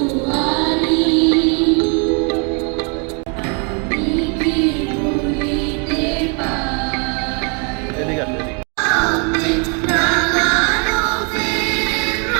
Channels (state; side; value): quieter; left; 36.6 dB